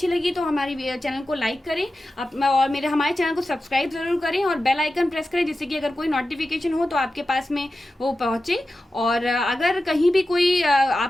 लगी तो हमारी चैनल को लाइक करें और हमारे चैनल को सब्सक्राइब ज़रूर करें और बेल आइकन प्रेस करें, जिससे कि अगर कोई नोटिफिकेशन हो तो आपके पास में वो पहुँचे। और अगर कहीं भी कोई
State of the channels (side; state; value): both; normal; correlation 0.93